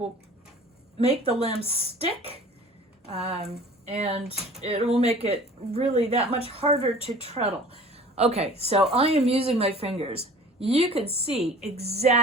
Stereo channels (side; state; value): both; normal; correlation 0.46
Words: make the limbs stick, and it will make it really that much harder to treadle. Okay, so I am using my fingers. You can see